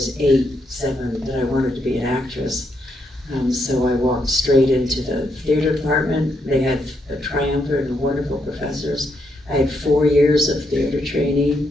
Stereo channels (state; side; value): normal; both; correlation 0.78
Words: 8, 7 that I wanted to be an actress. So I walked straight into the theater department. They had a triumvirate of wonderful professors. I had 4 years of theater